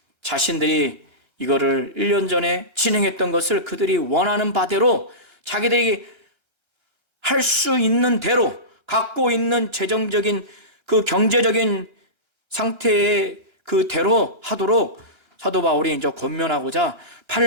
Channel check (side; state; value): right; late; 1.3 ms